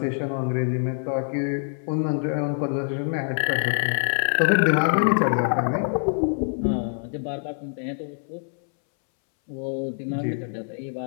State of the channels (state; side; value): silent; right; 62 dB below the other